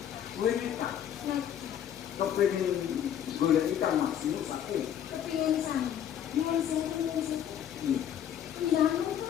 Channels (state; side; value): quieter; right; 9.8 dB